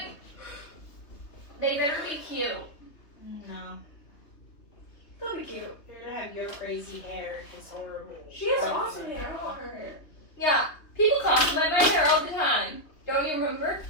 They better be cute. No. They'll be cute. You're gonna have your crazy hair. It's horrible. She has awesome hair. I want her hair. Yeah, people compliment my hair all the time. Don't you remember?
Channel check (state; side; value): late; right; 3.3 ms